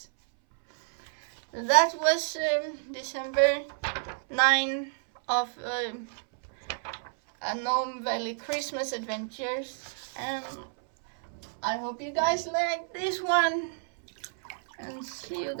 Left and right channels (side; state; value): left; silent; 58 dB below the other